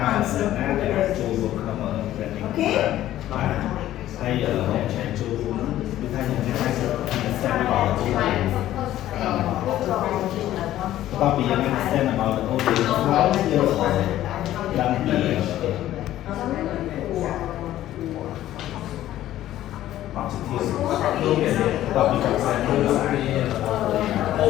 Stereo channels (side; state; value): right; quieter; 13.5 dB